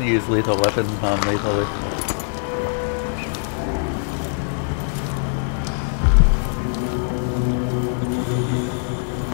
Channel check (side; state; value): right; silent; digital silence